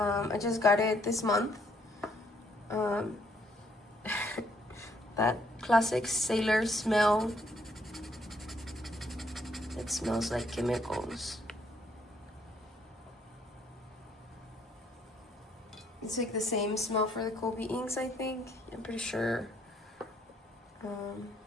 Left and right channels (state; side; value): normal; both; correlation 0.68